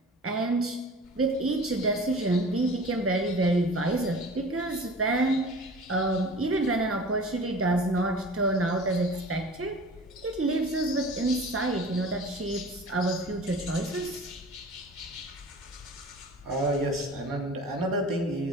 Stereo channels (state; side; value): normal; both; correlation 0.41